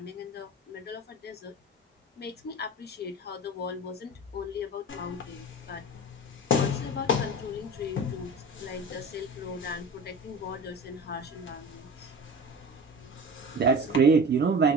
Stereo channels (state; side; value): normal; both; correlation 0.35